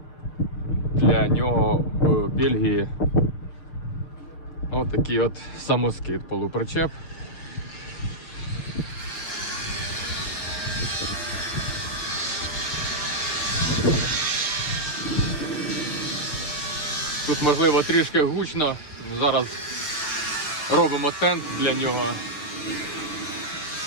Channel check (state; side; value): late; right; 6.5 ms